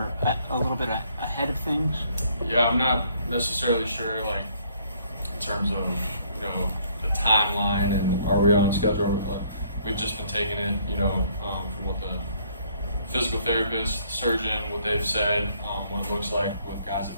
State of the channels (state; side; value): inverted; both; correlation -0.64